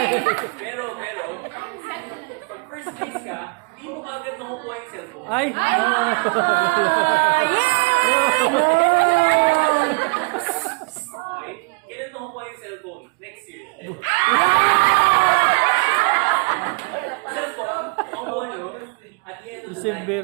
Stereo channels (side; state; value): left; quieter; 30.7 dB